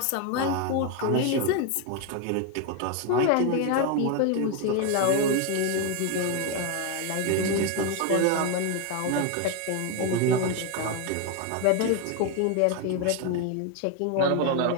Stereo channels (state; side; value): different; both; correlation 0.01